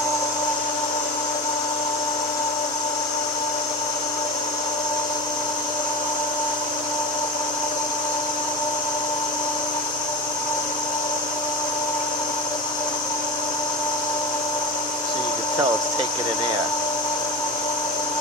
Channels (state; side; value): normal; both; correlation 0.29